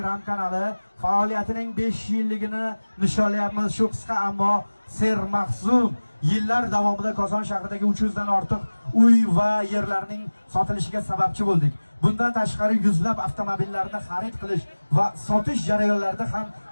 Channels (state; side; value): inverted; both; correlation -1.00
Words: kanali faoliyatining 5 yilligini nishonlayapmiz. Shu qisqa ammo sermahzun yillar davomida Koson shahridagi 300 dan ortiq uy va yerlarning sotilishiga sababchi bo'ldik. Bundan tashqari yuzlab avtomobillarni xarid qilish va sotish jarayonlarida ham